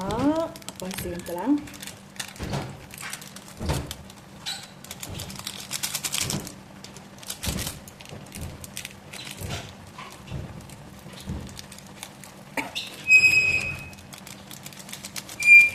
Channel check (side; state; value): both; identical; correlation 1.00